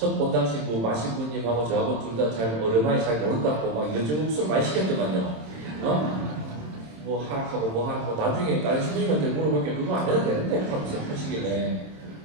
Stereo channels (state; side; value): late; left; 27 ms